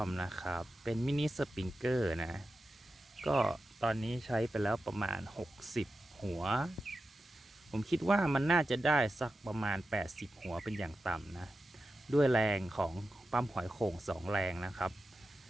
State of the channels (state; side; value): normal; both; correlation 0.91